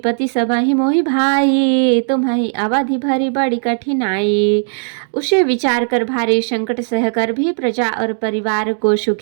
सबहि मोहि भाई, तुम्हि अवधि भरी बड़ी कठिनाई। उसे विचार कर भारी संकट सहकर भी प्रजा और परिवार को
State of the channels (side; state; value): left; silent; digital silence